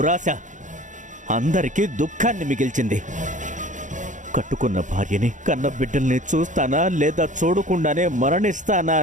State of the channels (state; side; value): late; left; 0.36 ms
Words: అందరికీ దుఃఖాన్ని మిగిల్చింది. కట్టుకున్న భార్యని, కన్న బిడ్డల్ని చూస్తానా లేదా చూడకుండానే మరణిస్తానా